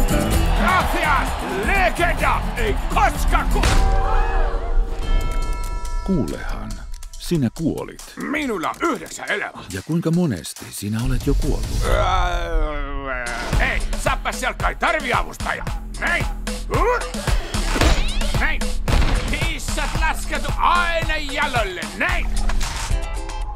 Gracias, legenda! Ei koska Kuulehan, sinä kuolit. Minulla on 9 elämää. Ja kuinka monesti sinä olet jo kuollut? Ei, saapaselka ei tarvi avustajaa. Näin! Näin! Kissat lasketu aina jalolle, näin!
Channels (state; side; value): identical; both; correlation 1.00